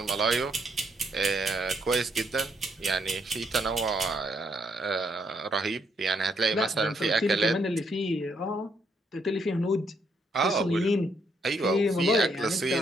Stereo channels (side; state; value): both; normal; correlation 0.74